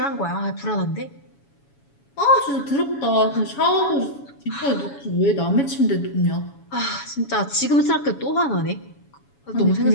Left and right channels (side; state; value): right; late; 7.1 ms